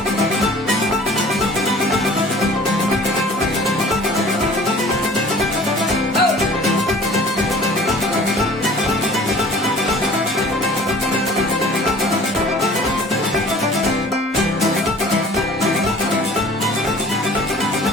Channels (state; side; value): normal; both; correlation 0.48